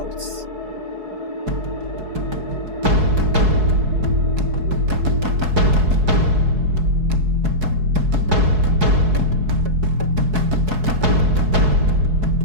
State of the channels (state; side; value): late; left; 4.7 ms